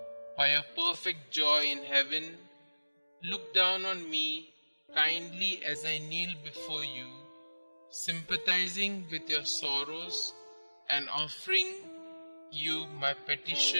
by your perfect joy in heaven, look down on me kindly as I kneel before you, sympathizing with your sorrows and offering you my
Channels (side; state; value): both; inverted; correlation -1.00